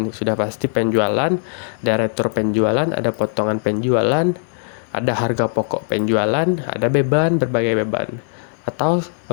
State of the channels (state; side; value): silent; right; digital silence